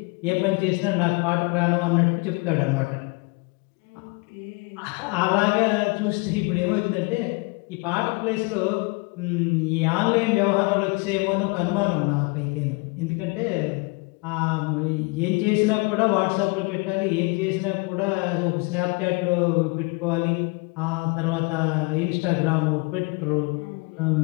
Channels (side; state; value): right; quieter; 28.4 dB